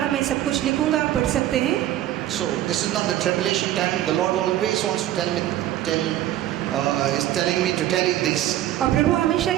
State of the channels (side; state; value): left; quieter; 13.3 dB